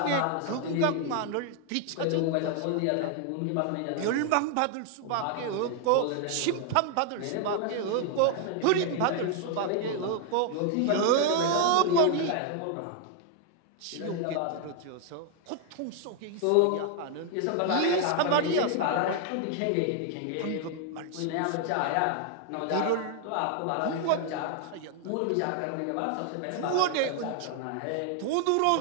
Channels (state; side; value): different; both; correlation 0.00